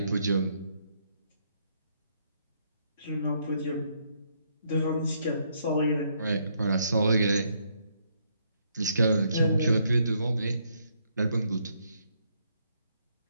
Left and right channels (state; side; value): inverted; both; correlation -0.73